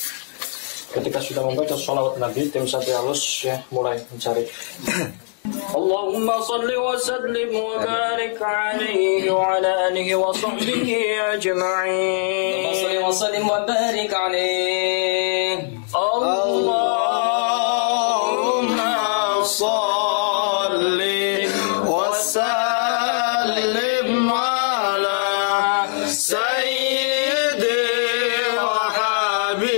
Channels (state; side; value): silent; right; 65 dB below the other